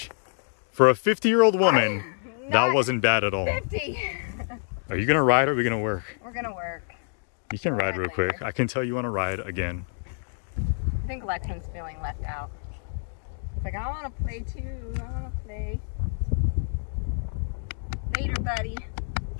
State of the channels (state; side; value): silent; right; 60 dB below the other